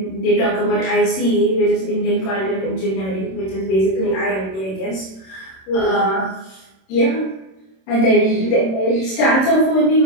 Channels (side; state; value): right; late; 26 ms